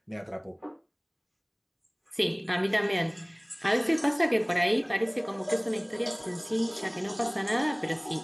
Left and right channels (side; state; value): both; identical; correlation 1.00